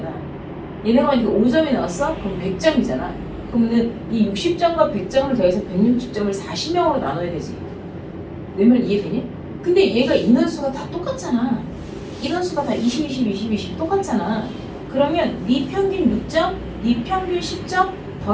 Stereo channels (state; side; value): identical; both; correlation 1.00